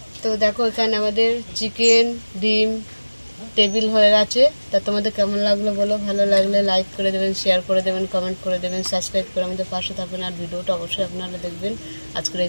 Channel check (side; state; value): both; inverted; correlation -1.00